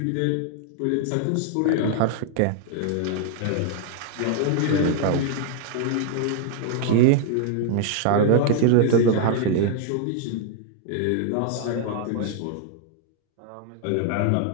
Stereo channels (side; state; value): both; different; correlation 0.00